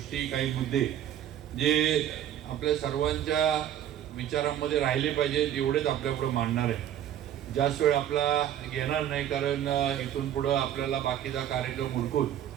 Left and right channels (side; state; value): left; quieter; 10.8 dB